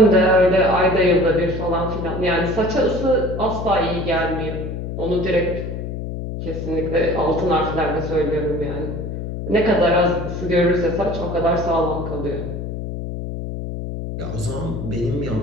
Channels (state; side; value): noise; left; hum, 6 dB below the sound